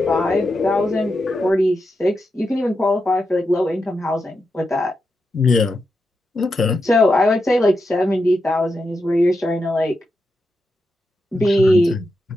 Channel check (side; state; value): both; normal; correlation 0.87